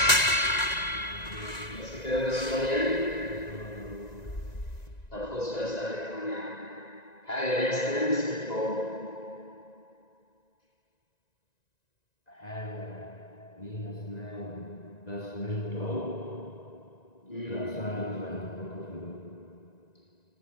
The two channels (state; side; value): late; right; 1.9 ms